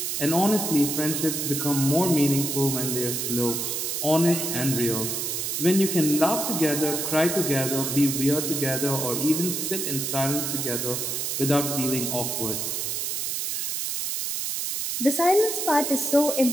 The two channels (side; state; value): right; noise; hiss, 2 dB below the sound